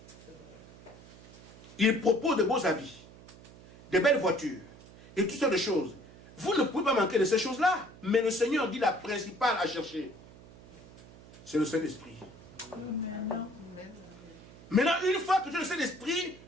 Il propose de beaux habits, de belles voitures et toutes sortes de choses. Vous ne pouvez pas manquer de ces choses-là. Mais le Seigneur dit la principale à chercher. C'est le Saint-Esprit. Maintenant, une fois que tu as le Saint-Esprit,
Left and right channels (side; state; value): right; noise; hum, 20 dB below the sound